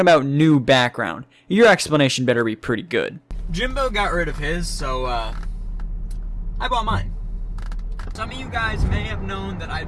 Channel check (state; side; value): identical; both; correlation 1.00